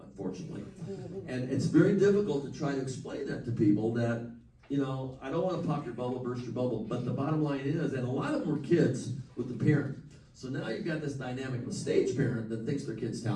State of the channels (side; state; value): both; identical; correlation 1.00